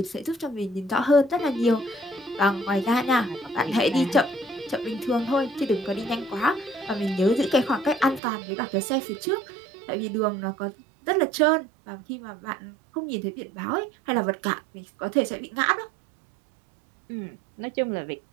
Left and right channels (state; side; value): drops out; left; at 8.2 s